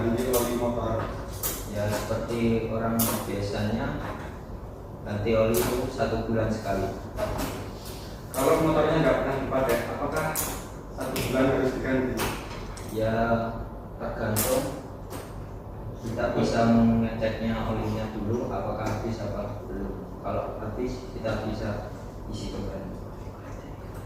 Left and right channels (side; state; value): both; identical; correlation 1.00